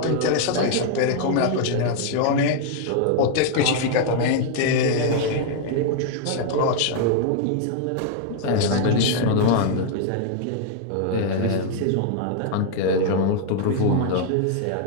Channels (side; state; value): both; different; correlation 0.00